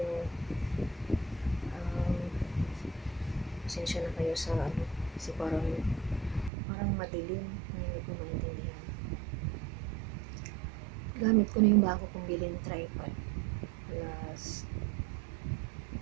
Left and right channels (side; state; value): left; drops out; at 6.5 s